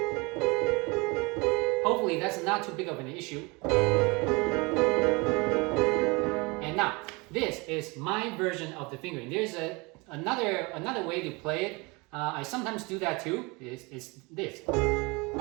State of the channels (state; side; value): quieter; left; 26.8 dB